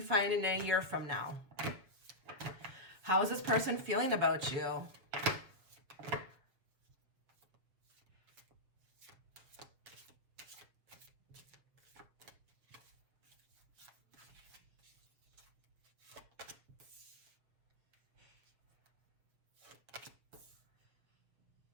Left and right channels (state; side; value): late; left; 7.0 ms